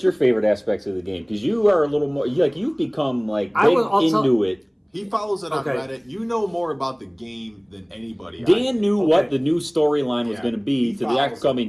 your favorite aspects of the game? Because you are a little more, you've become like into it. He follows it on Reddit. You know more about the game than anybody. Dan knew what the new storyline was going to be to the upcoming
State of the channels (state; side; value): identical; both; correlation 1.00